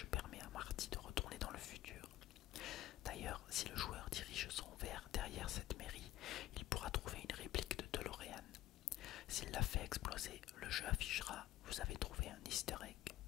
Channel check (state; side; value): quieter; right; 14.5 dB